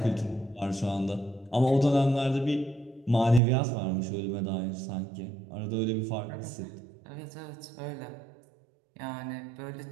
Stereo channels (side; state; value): left; drops out; at 3.4 s